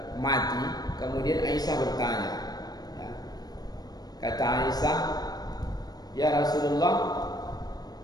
mati, kemudian Aisyah bertanya, ya. Kata Aisyah, ya Rasulullah,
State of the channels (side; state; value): right; late; 0.19 ms